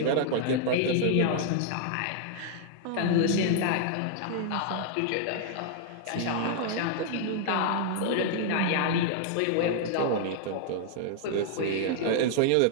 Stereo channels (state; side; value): different; both; correlation 0.00